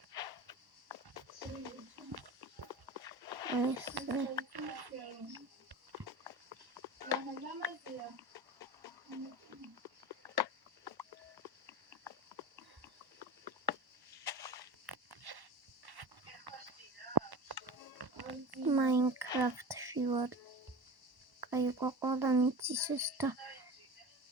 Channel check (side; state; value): left; late; 1.1 ms